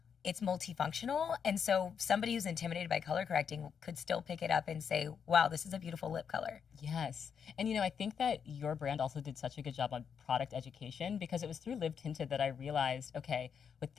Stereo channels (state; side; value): quieter; right; 7.1 dB